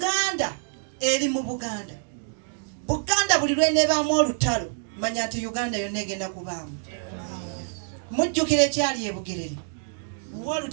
eri mu Buganda. Buganda buli lw'eneebaamu olutalo manya nti Uganda yonna egenda kubaamu. Mujjukira ekyali e Bugerere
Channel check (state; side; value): silent; left; digital silence